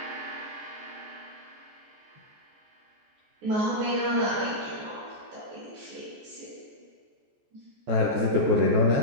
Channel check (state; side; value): late; left; 14 ms